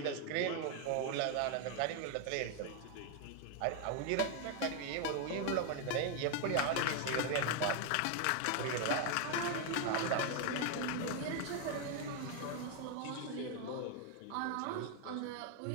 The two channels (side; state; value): both; different; correlation 0.01